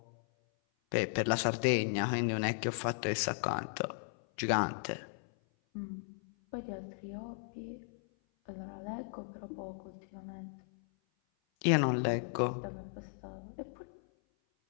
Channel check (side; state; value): right; silent; 54 dB below the other